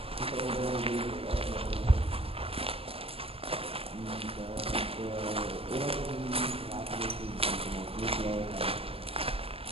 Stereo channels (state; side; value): late; left; 0.28 ms